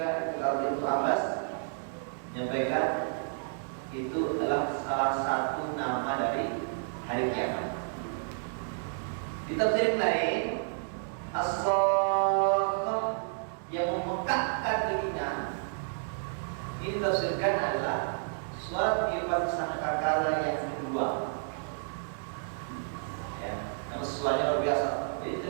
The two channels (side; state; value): left; silent; digital silence